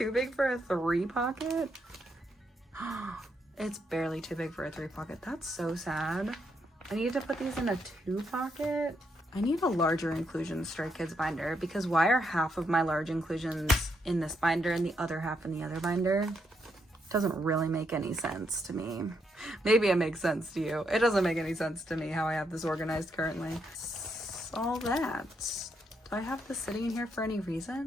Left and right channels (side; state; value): both; normal; correlation 0.78